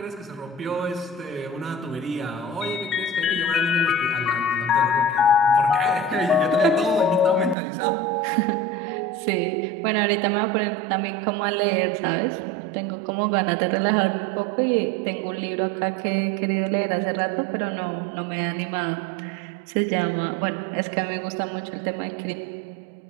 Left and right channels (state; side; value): drops out; left; at 7.6 s